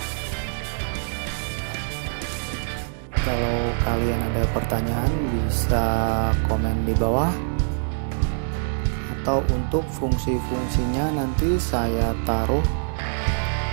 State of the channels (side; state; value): left; silent; digital silence